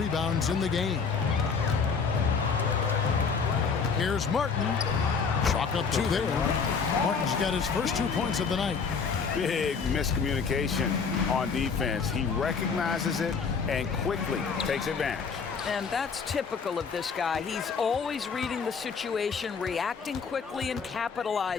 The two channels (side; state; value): right; quieter; 5.6 dB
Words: in the game. Here's Martin. Chalk up 2 there. Martin's got his first 2 points of the night. big miscommunication on defense. He recognizes it and quickly takes advantage. And that's typical of this guy. He's always reading the situation, reacting quickly, and